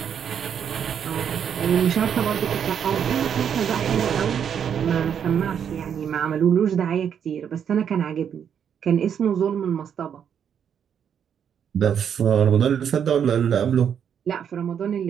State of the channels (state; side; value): quieter; left; 8.2 dB